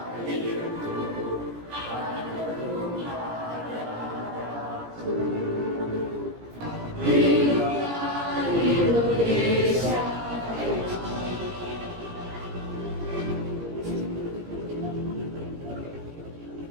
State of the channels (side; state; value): left; late; 17 ms